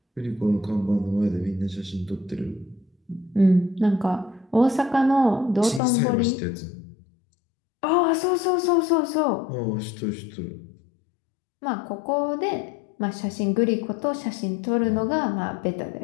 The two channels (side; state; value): right; drops out; at 5.8 s